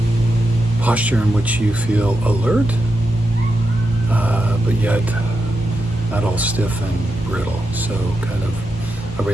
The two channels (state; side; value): noise; left; hum, 17 dB below the sound